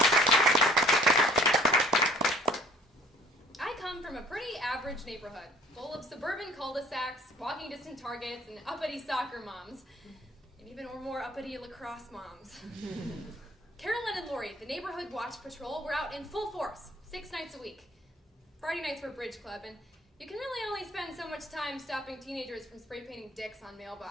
I come from a pretty average neighborhood, full of suburban cul-de-sacs, walking distance Targets, and uppity soccer moms, and even more uppity lacrosse moms. Carolyn and Lori, the neighborhood watch patrol, were out in full force, 6 nights a week. Friday nights were bridge club, and you can really only spend so much time stopping teenagers from spray painting dicks on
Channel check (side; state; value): both; normal; correlation 0.54